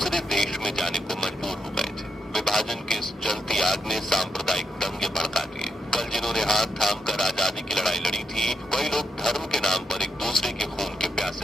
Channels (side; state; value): both; normal; correlation 0.81